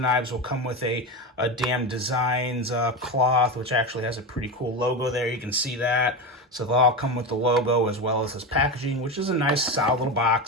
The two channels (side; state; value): both; normal; correlation 0.19